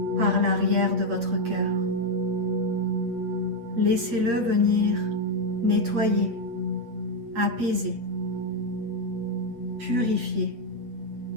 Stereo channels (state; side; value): late; left; 8.3 ms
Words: par l'arrière de votre cœur. Laissez-le venir nettoyer, apaiser, purifier.